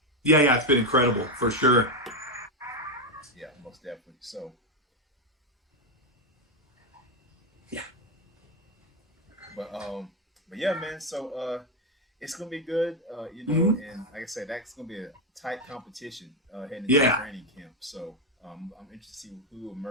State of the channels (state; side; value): normal; both; correlation 0.07